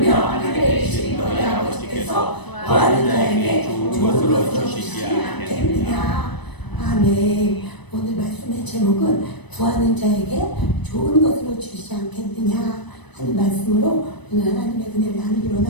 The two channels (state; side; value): late; right; 1.0 ms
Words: 하늘에 계신 너희 아버지께서 구하는 자에게 좋은 것으로 주시지 않겠느냐. 아멘. 오늘 말씀의 제목은 구하는 자에게 좋은 것으로 주시지 않겠느냐 하는 말씀으로 오늘 하나님의 은혜를 나누기